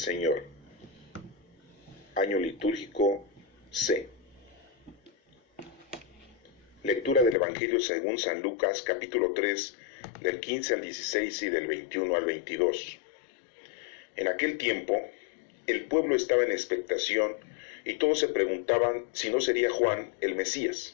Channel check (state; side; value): drops out; right; at 7.4 s